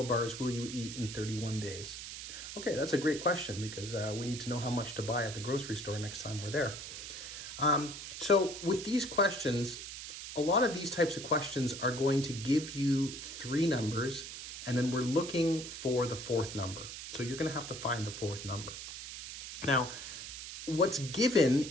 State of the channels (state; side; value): noise; right; hiss, 9 dB below the sound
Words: bars will you eat in 31 days? Okay, that's a great question because we need to know how much to buy at the grocery store next time we're there. So with these questions, a lot of these types of questions are going to give you 3 numbers, and then we're looking for the 4th number. So you're going to have to find the 4th number. Now, what's